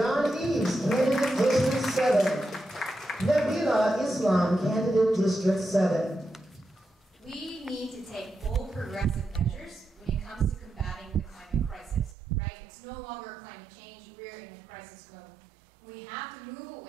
Eaves, candidate District 7. Nabilah Islam, candidate District 7. We need to take bold progressive measures when it comes to combating the climate crisis, right? It's no longer climate change, we're in a crisis mode. We have to move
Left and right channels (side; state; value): left; drops out; at 12.2 s